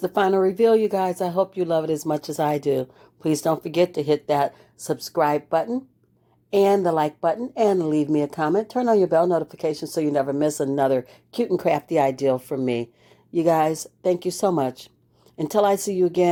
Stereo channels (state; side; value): identical; both; correlation 1.00